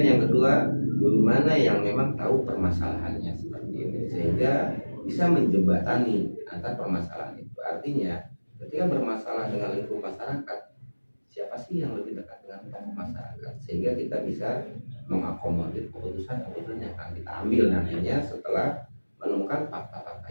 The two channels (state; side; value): inverted; both; correlation -1.00